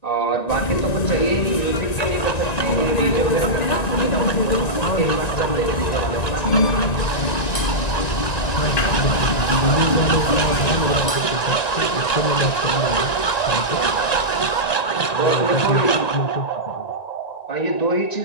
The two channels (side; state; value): right; late; 1.9 ms